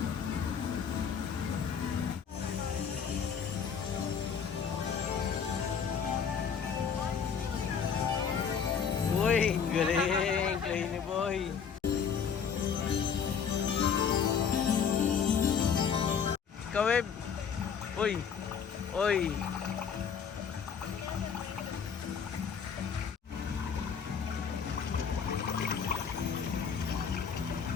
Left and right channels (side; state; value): right; quieter; 6.9 dB